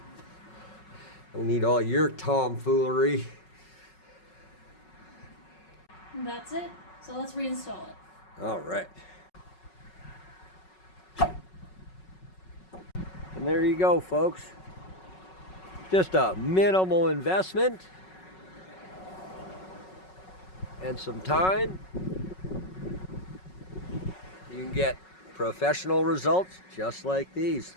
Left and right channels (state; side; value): late; right; 5.4 ms